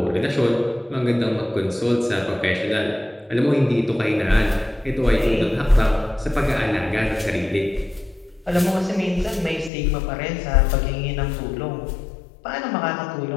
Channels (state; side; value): drops out; right; at 9.7 s